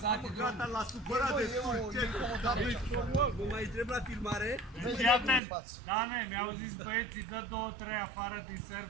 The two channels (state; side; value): drops out; left; at 5.4 s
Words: Gata, l-a supărat de Vă mai întreb la filmare? Fii atent, Dane, mi-au zis băieții, dă 2-3 afară din